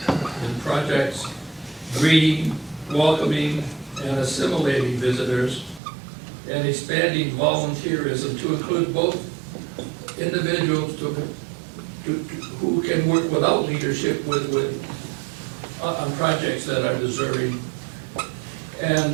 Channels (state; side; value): drops out; left; at 5.8 s